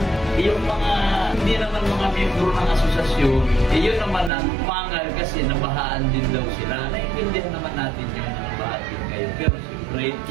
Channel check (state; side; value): drops out; left; at 4.3 s